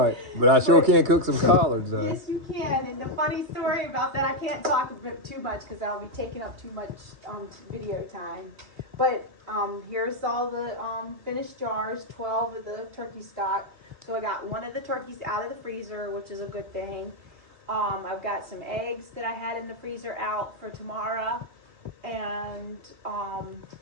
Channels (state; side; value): late; left; 3.1 ms